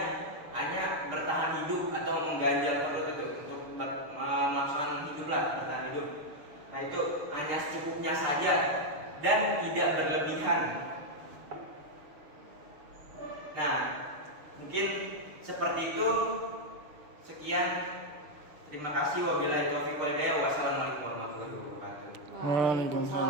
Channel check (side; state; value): left; late; 6.7 ms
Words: hanya bertahan hidup atau mengganjal perut itu untuk melaksanakan bertahan hidup. Nah, itu hanya secukupnya saja dan tidak berlebihan. Nah, Mungkin seperti itu. Sekian. Terima kasih. Wabillahi taufiq wal hidayah. Wassalamualaikum warahmatullahi wabarakatuh.